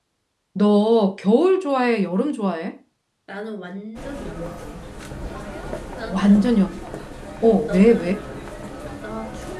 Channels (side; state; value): both; identical; correlation 1.00